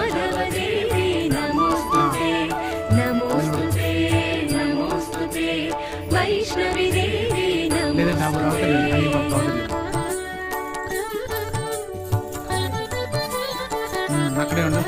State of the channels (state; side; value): identical; both; correlation 1.00